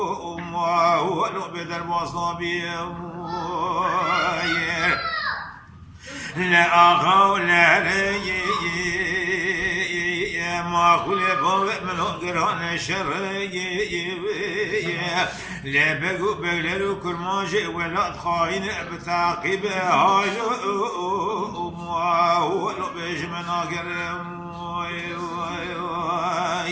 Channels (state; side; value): identical; both; correlation 1.00